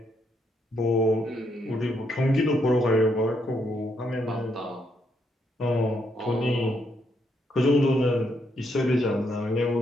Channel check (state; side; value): normal; both; correlation 0.76